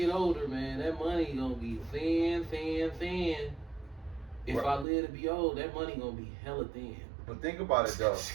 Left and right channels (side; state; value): left; drops out; at 4.9 s